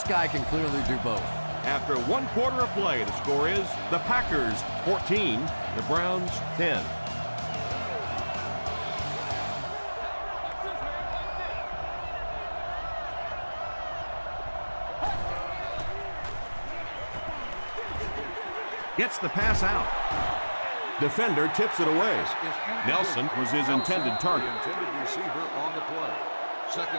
guy can clearly do both. After 1 quarter of play, the score is the Packers 14, the Browns 10. Gets the pass out. Defender tips it away. Nelson was his intended target. The intended receiver on the play.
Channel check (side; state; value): both; inverted; correlation -1.00